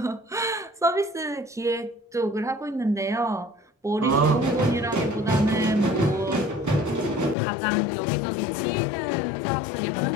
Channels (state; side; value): drops out; right; at 7.4 s